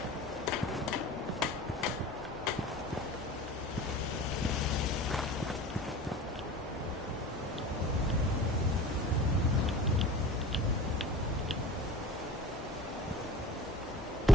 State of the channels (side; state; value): both; normal; correlation 0.41